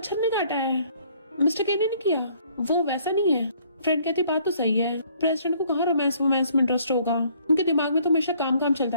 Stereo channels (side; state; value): both; inverted; correlation -0.62